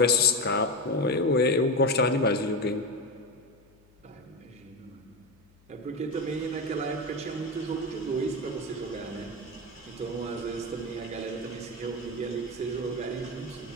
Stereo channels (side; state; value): left; noise; hum, 30 dB below the sound